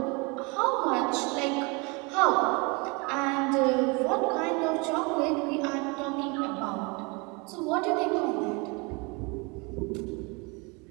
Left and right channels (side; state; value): left; quieter; 29.2 dB